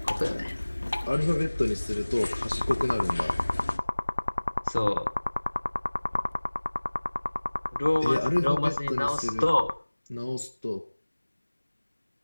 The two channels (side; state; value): both; inverted; correlation -1.00